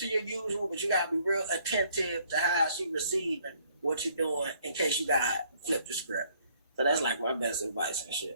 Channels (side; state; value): both; inverted; correlation -0.64